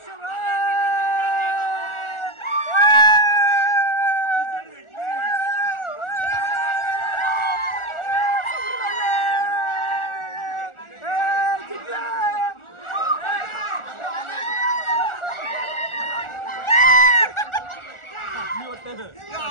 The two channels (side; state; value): right; late; 1.4 ms